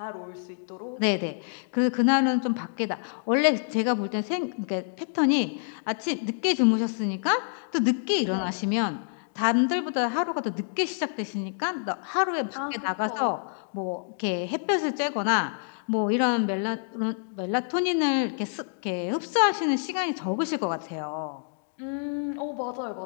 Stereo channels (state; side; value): silent; right; digital silence